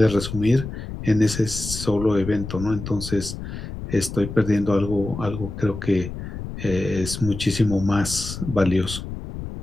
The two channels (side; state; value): left; noise; rumble, 9 dB below the sound